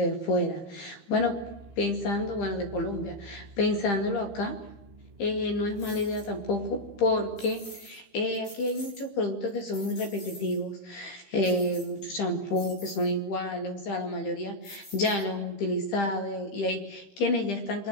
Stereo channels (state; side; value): late; right; 13 ms